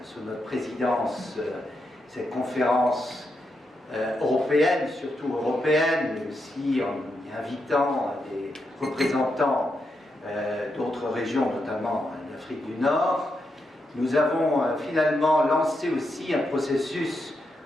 sous notre présidence, cette conférence européenne, surtout européenne, mais aussi en y invitant des représentants d'autres régions, notamment d'Afrique du Nord, nous avons finalement lancé aussi un processus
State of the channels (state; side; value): normal; both; correlation 0.84